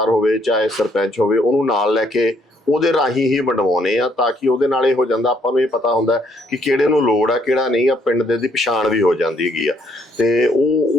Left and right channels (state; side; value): normal; both; correlation 0.68